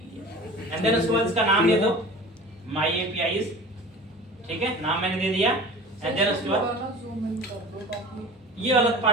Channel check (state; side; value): normal; both; correlation 0.39